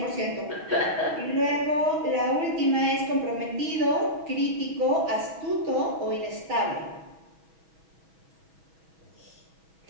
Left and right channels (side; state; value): left; late; 6.2 ms